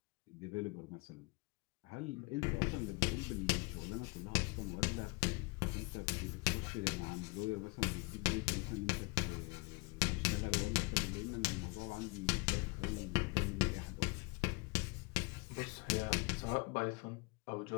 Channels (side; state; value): right; quieter; 27.2 dB